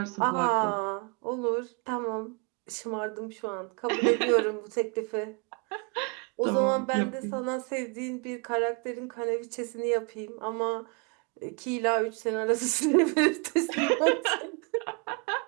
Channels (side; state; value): left; quieter; 33.9 dB